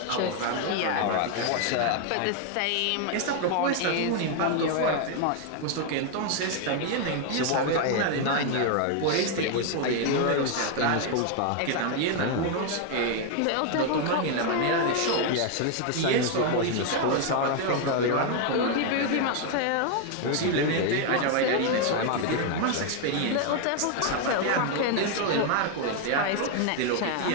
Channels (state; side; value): different; both; correlation 0.01